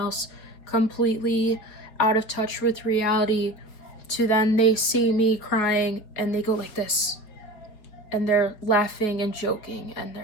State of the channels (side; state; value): right; late; 4.8 ms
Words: completely out of touch with reality, to then they see me crying and they go like this, and they're laughing and joking, and